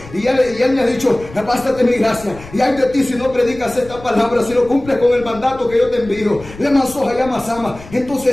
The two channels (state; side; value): noise; left; rumble, 18 dB below the sound